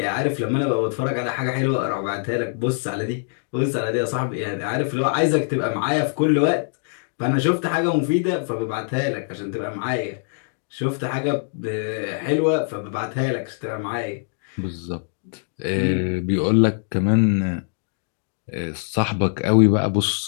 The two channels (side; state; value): right; silent; digital silence